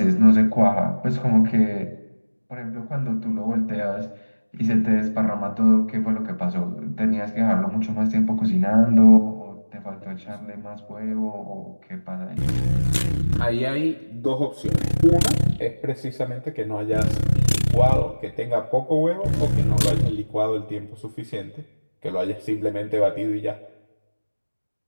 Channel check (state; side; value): inverted; both; correlation -1.00